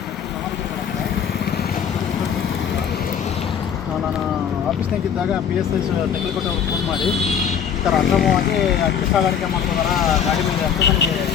ನಾನು ಆಫೀಸ್ನಾಗಿದ್ದಾಗ PSI ಟೆಕ್ನಿಕಲ್ ಅವ್ರಿಗೆ ಫೋನ್ ಮಾಡಿ ಈ ಥರ ಅಕ್ರಮವಾಗಿ ಅಕ್ಕಿ ಸಾಗಾಣಿಕೆ ಮಾಡ್ತಿದಾರ ಗಾಡಿ ಮೇಲೆ ಅಂತ ನನಗೆ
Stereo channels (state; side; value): quieter; right; 7.9 dB